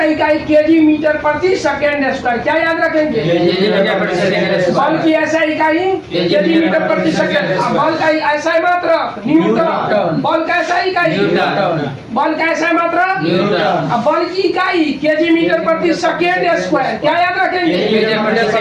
इकाई केजी मीटर प्रति सेकेंड स्क्वायर। क्या याद रखेंगे? केजी मीटर प्रति सेकेंड स्क्वायर। बल की ऐसा इकाई केजी मीटर प्रति सेकेंड। बल का ऐसा मात्रक न्यूटन। बल का ऐसा इकाई न्यूटन। बल का ऐसा मात्रक न्यूटन। अब बल की इकाई केजी मीटर प्रति सेकेंड स्क्वायर। क्या याद रखेंगे? केजी मीटर प्रति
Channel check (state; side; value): identical; both; correlation 1.00